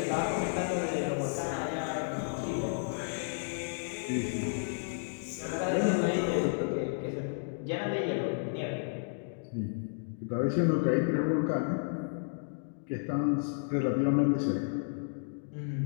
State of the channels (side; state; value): right; silent; digital silence